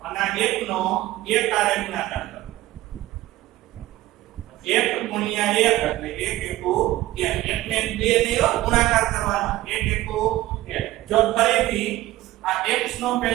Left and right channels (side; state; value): left; quieter; 16.2 dB